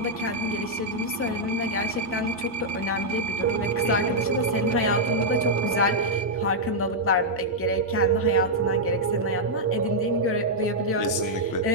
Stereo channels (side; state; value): both; normal; correlation -0.05